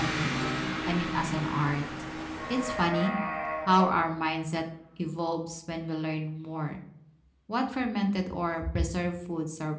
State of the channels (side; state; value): both; identical; correlation 1.00